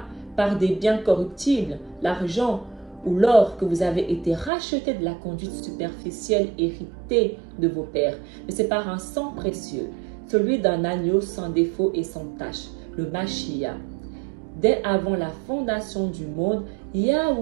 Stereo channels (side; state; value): left; drops out; at 4.5 s